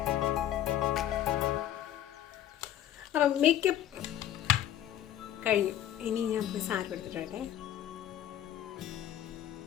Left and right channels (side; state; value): right; quieter; 11.6 dB